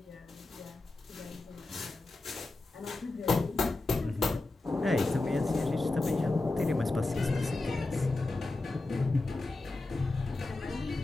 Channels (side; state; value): right; quieter; 3.1 dB